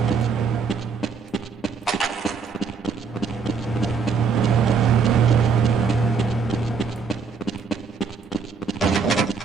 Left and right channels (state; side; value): quieter; left; 5.5 dB